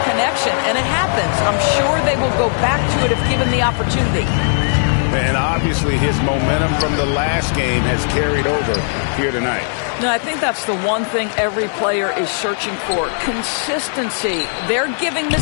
connection, and it happens. I'm sure they will go back to it if given the opportunity. And obviously his momentum from the last game has carried over here tonight. No, I think that's the one thing every player is searching for. Consistency. They're giving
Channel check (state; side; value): silent; right; 60 dB below the other